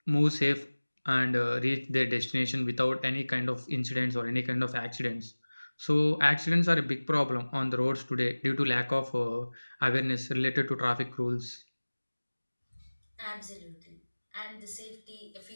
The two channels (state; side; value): inverted; both; correlation -1.00